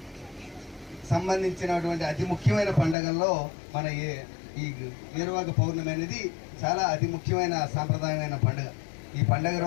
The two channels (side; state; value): right; drops out; at 3.0 s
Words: సంబంధించినటువంటి అతి ముఖ్యమైన పండుగల్లో మన ఈ ఏరువాక పౌర్ణమి అనేది చాలా అతి ముఖ్యమైన సాంప్రదాయమైన పండుగ. ఈ పండుగ